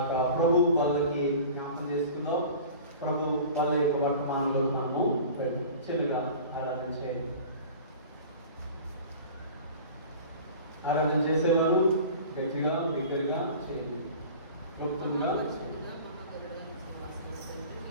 ప్రభు వాళ్ళకి జ్ఞాపకం చేసుకుందాం. ప్రభు వాళ్ళ యొక్క వర్తమానంలో మనము చెలుగా ఆరాధన చేయాలి. ఆరాధన చేసేవారు గట్టిగా బిగ్గరగా చేయాలి, క్లుప్తంగా చేయాలి.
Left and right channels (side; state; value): both; inverted; correlation -0.40